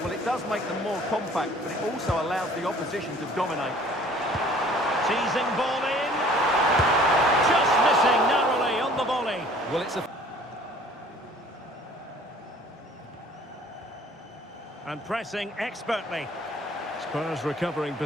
Well, it does make them more compact, but it also allows the opposition to dominate. Teasing ball in. Just missing narrowly on the volley. Well, it's a... And pressing expertly. Spurs recovering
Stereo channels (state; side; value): normal; both; correlation 0.52